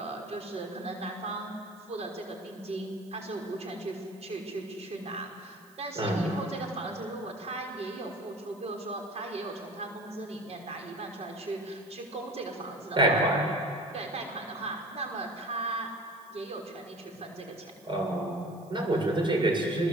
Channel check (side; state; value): right; noise; hiss, 27 dB below the sound